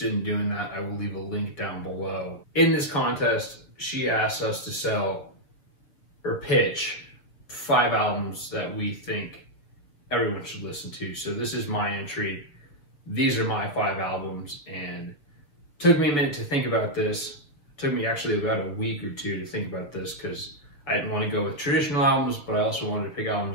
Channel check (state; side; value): late; right; 6.7 ms